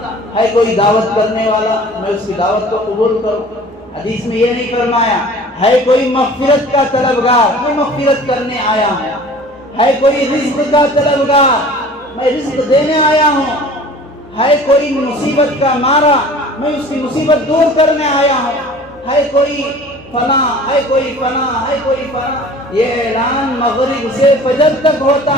ہے کوئی دعوت کرنے والا، میں اس کی دعوت کو قبول کروں۔ حدیث میں یہ نہیں فرمایا ہے کوئی مغفرت کا طلبگار، میں مغفرت کرنے آیا ہوں، ہے کوئی رزق کا طلبگار، میں رزق دینے آیا ہوں، ہے کوئی مصیبت کا مارا، میں اس کی مصیبت دور کرنے آیا ہوں، ہے کوئی فنا، ہے کوئی فنا، ہے کوئی فنا۔ یہ اعلان مغرب سے فجر تک ہوتا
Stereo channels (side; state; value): both; normal; correlation 0.45